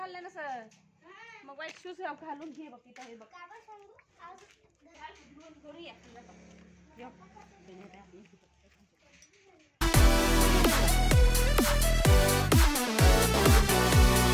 ना सर मग वाईट शूज घालून घे बघ तिथं हे बघ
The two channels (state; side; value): identical; both; correlation 1.00